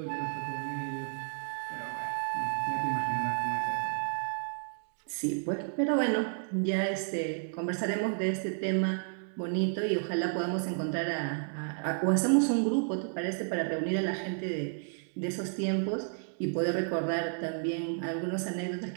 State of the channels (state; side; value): silent; left; 57 dB below the other